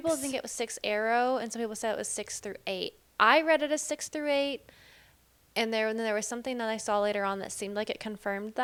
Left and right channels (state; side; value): identical; both; correlation 1.00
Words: think it was 6 Arrow, and some people said it was 6 through 8. I read it as 6 through 8, and then there was something that I saw later on that seemed like it confirmed